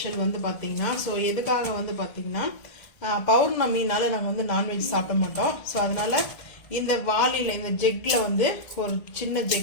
வந்து பார்த்தீங்கன்னா. ஸோ எதுக்காக வந்து பார்த்தீங்கன்னா பௌர்ணமினால நாங்கள் வந்து நான்வெஜ் சாப்பிட மாட்டோம். ஸோ அதனால் இந்த வாளியில் இந்த ஜெக்கில் வந்து ஒரு சின்ன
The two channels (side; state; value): right; late; 1.8 ms